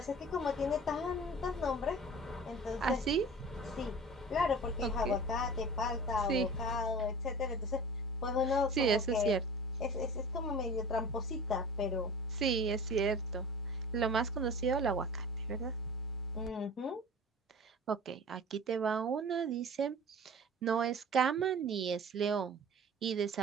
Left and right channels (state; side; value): normal; both; correlation 0.39